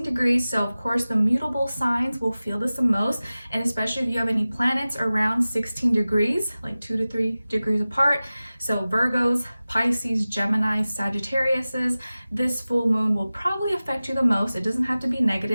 degrees. So of course the mutable signs will feel this the most, and especially if you have any planets around 16 degrees, like 2 to 3 degrees apart. So Virgos, Pisces, Gemini, Sagittariuses, this full moon will probably affect you the most. It doesn't have to be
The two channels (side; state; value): both; inverted; correlation -0.97